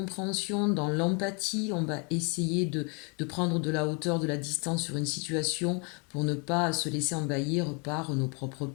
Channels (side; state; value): right; quieter; 33.8 dB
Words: dans l'empathie, on va essayer de prendre de la hauteur, de la distance sur une situation pour ne pas se laisser envahir par nos propres